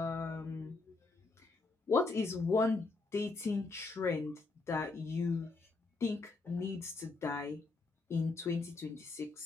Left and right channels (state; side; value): quieter; right; 3.7 dB